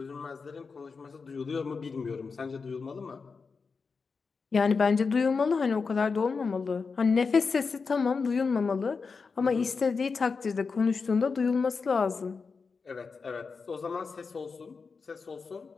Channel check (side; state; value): right; quieter; 4.9 dB